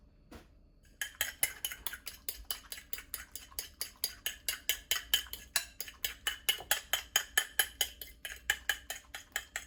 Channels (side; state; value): both; identical; correlation 1.00